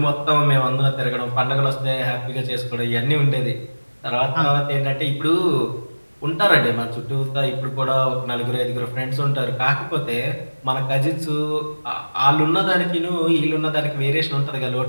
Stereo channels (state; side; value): inverted; both; correlation -1.00